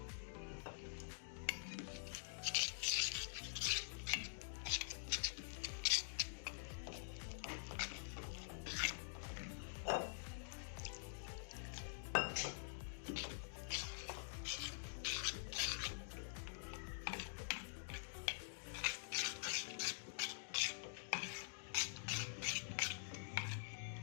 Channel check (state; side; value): silent; right; digital silence